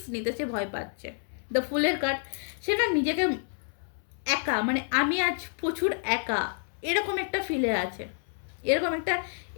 নিতে সে ভয় পাচ্ছে। দ্য ফুলের কার্ড, সে না নিজেকে একা, মানে আমি আজ প্রচুর একা, এরকম একটা ফিলে আছে, এরকম একটা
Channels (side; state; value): right; silent; 59 dB below the other